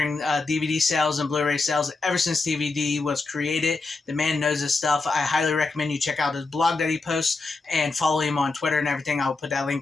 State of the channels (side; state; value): right; quieter; 3.8 dB